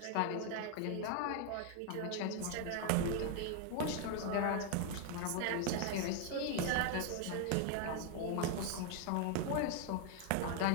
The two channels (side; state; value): both; different; correlation 0.00